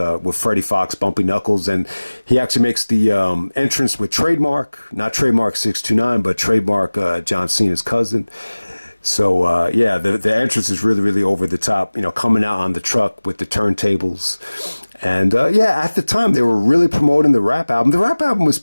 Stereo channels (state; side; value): inverted; both; correlation -1.00